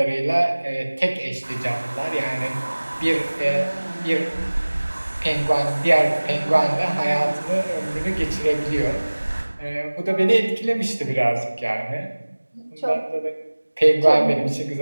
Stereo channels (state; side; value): inverted; both; correlation -1.00